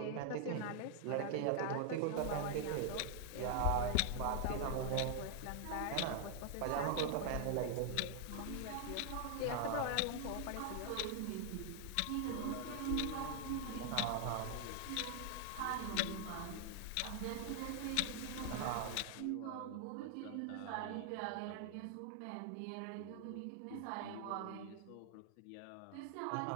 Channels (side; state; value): both; different; correlation 0.00